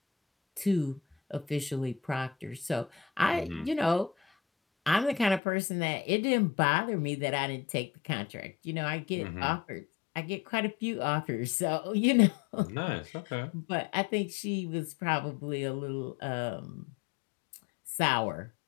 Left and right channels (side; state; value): right; drops out; at 5.4 s